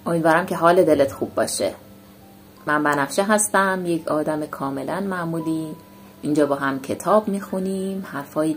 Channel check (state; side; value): identical; both; correlation 1.00